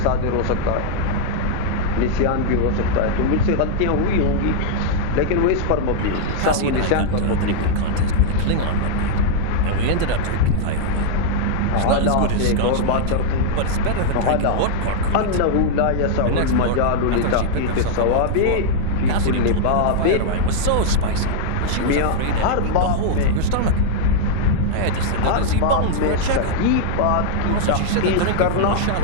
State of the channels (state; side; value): different; both; correlation -0.01